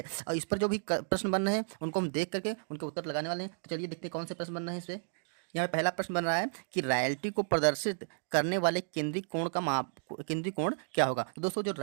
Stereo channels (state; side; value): silent; left; digital silence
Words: और इस पर जो भी प्रश्न बन रहे हैं उनको हम देख करके उनके उत्तर लगाने वाले हैं। तो चलिए देखते हैं कौन से प्रश्न बन रहे हैं इस पर। यहाँ पे पहला प्रश्न बन रहा है कि रॉयल्टी को प्रदर्शित करने वाले केंद्रीय कोण का माप, केंद्रीय कोण क्या होगा। तो दोस्तों जो